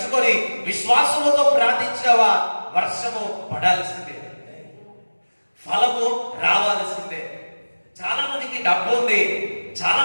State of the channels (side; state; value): both; inverted; correlation -1.00